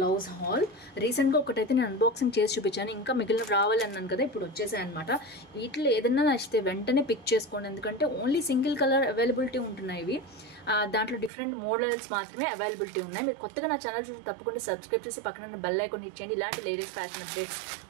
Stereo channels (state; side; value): drops out; left; at 11.3 s